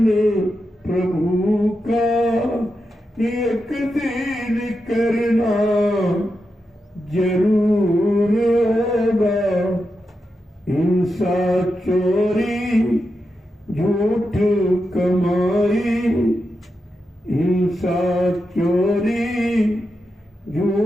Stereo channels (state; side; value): normal; both; correlation 0.88